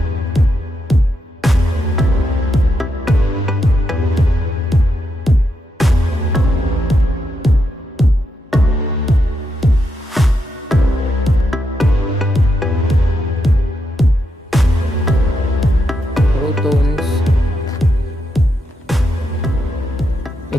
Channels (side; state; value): both; normal; correlation 0.82